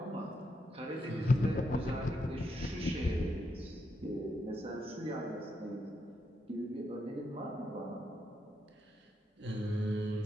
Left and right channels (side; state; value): both; normal; correlation 0.81